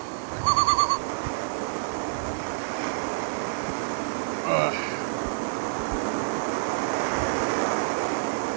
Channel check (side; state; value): left; silent; digital silence